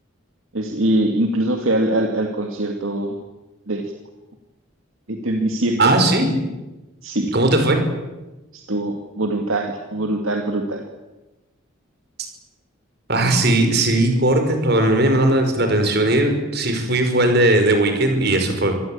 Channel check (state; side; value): normal; both; correlation 0.33